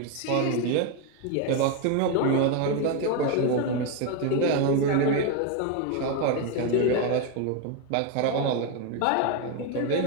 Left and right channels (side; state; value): both; different; correlation 0.02